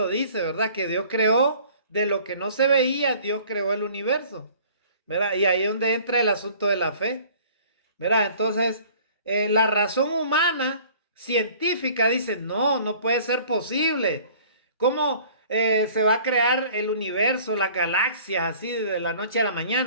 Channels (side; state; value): both; inverted; correlation -0.50